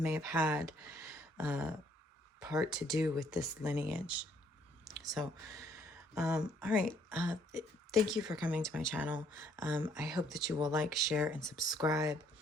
have had part to do with this lineage. So, all right. Thank you for coming to my channel. I hope that you will like, share, and subscribe.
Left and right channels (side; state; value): both; normal; correlation 0.65